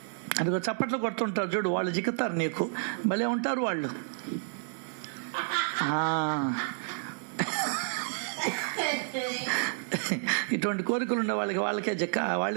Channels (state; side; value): silent; left; digital silence